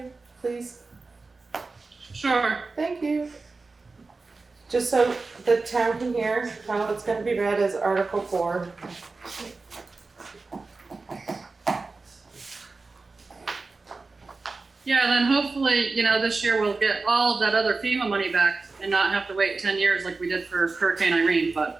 please? Sure. Thank you. Just so the town can hear how it's gonna be read as Article 4. Yeah, then hopefully, you know, this year we'll get all of that other FEMA money back and not have to wait 10 years like we did for Hurricane Irene,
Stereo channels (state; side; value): quieter; left; 3.8 dB